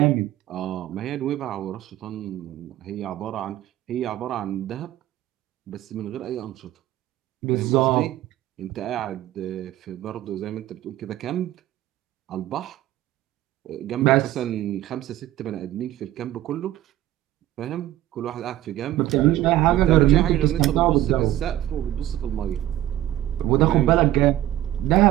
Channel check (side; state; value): left; quieter; 13.9 dB